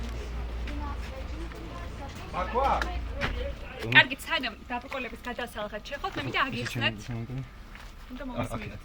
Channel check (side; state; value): both; identical; correlation 1.00